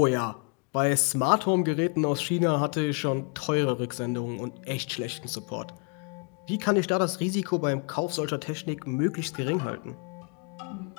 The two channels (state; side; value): quieter; right; 36.5 dB